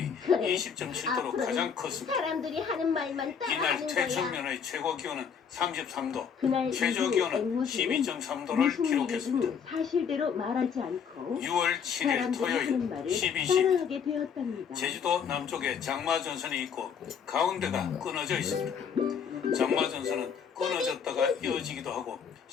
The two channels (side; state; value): right; quieter; 7.0 dB